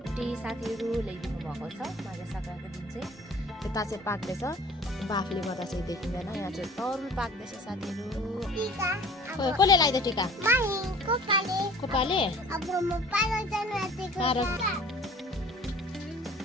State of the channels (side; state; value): both; normal; correlation 0.48